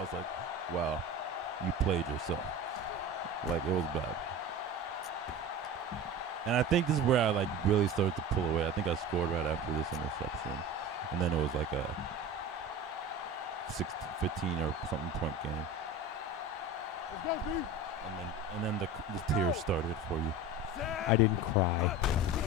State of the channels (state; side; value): normal; both; correlation 0.33